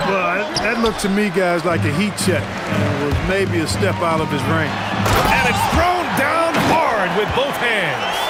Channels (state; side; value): identical; both; correlation 1.00